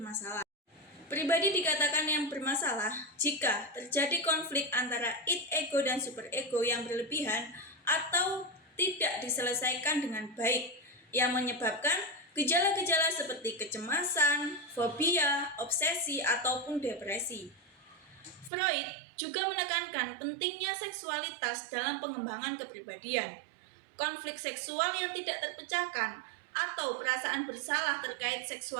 Pribadi dikatakan yang bermasalah jika terjadi konflik antara id, ego, dan superego yang berlebihan atau tidak diselesaikan dengan baik, yang menyebabkan gejala-gejala seperti kecemasan, fobia, obsesi, ataupun depresi. Freud juga menekankan pentingnya seksualitas dalam pengembangan kepribadian. Konflik seksual yang tidak terpecahkan atau perasaan bersalah terkait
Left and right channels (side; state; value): left; drops out; at 18.5 s